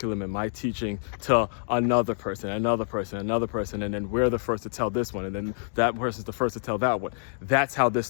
and my teaching to another person. And then we're the first to tell this one. And then that person's the first to tell that one. That's how this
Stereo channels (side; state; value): right; silent; digital silence